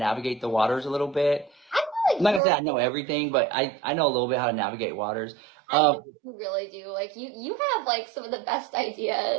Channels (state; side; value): drops out; left; at 2.4 s